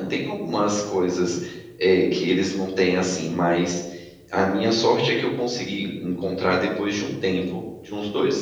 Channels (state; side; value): identical; both; correlation 1.00